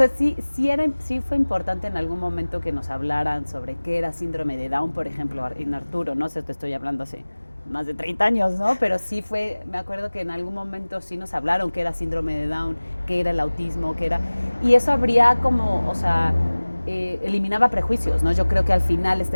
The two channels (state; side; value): inverted; both; correlation -1.00